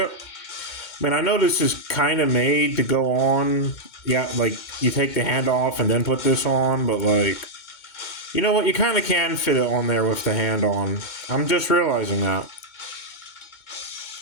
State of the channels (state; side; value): late; right; 2.2 ms